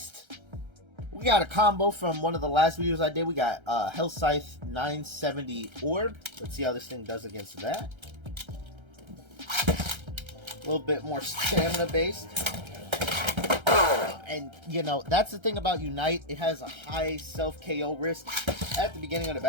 We got a combo from one of the last videos I did. We got Hell Scythe 970 Orb. Let's see how this thing does against that. A little bit more stamina based. And, you know, that's the thing about Unite. It has a high self-KO risk at the beginning of the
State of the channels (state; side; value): late; left; 1.3 ms